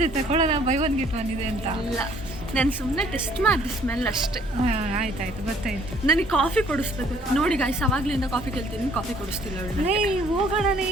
ತಗೊಳ್ಳೋಣ, ಬೈ ಒನ್ ಗೆಟ್ ಒನ್ ಇದೆ ಅಂತ. ಇಲ್ಲ, ನಾನು ಸುಮ್ಮನೆ ಟೆಸ್ಟ್ ಮಾಡಿದೆ ಸ್ಮೆಲ್ ಅಷ್ಟೇ. ಆಯ್ತಾಯ್ತು, ಗೊತ್ತಾಯ್ತು. ನನಗೆ ಕಾಫಿ ಕೊಡಿಸ್ಬೇಕು ನೋಡಿ ಗೈಸ್, ಅವಾಗ್ಲಿಂದ ಕಾಫಿ ಕೇಳ್ತೀನಿ, ಕಾಫಿ ಕೊಡಿಸ್ತಿಲ್ಲ ಅವಳು. ಹೋಗೋಣನೇ,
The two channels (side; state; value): both; normal; correlation 0.59